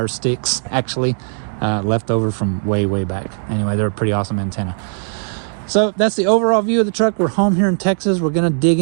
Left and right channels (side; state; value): left; silent; 67 dB below the other